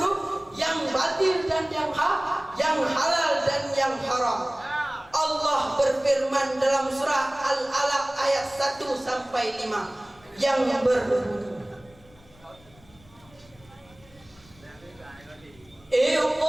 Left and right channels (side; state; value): left; noise; rumble, 27 dB below the sound